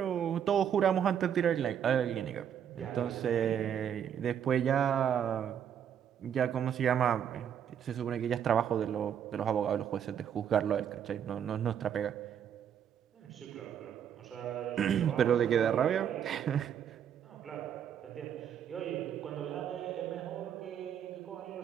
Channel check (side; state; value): left; quieter; 8.9 dB